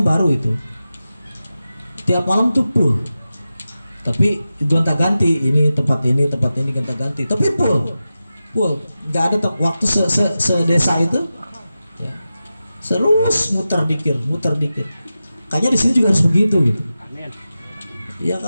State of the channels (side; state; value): both; inverted; correlation -0.93